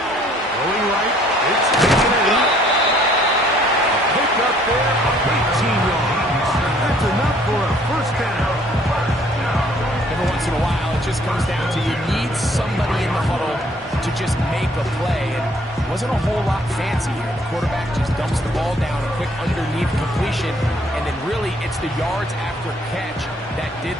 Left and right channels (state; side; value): normal; both; correlation 0.61